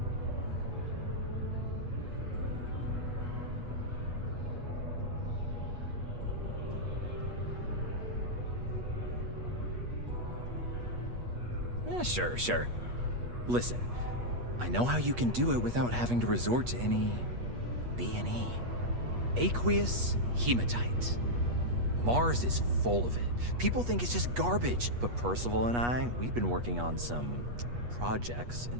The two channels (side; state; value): left; late; 8.3 ms